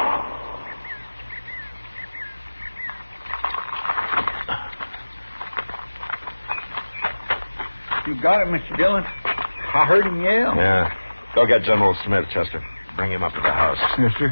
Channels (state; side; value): inverted; both; correlation -1.00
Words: You got it, Mr. Dillon. I heard him yell. Yeah. Go get General Smith, Chester. Bring him up to the house. Yes,